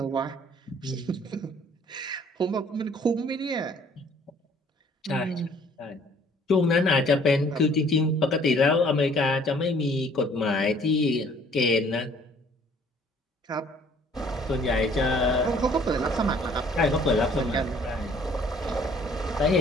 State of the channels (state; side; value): normal; both; correlation 0.57